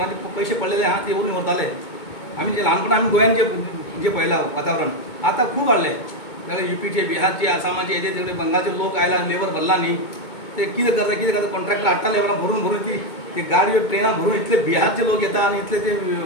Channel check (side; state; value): right; late; 2.2 ms